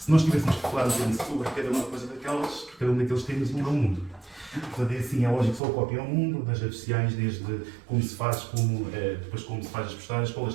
nós tivéssemos que falar um bocadinho sobre cada uma coisa daquelas, cada um daqueles temas muda o mundo. Portanto, é assim, é lógico, só o copy ao mundo, das redes sociais, desde como se faz, depois como se faz as postagens, qual a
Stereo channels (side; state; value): left; drops out; at 5.6 s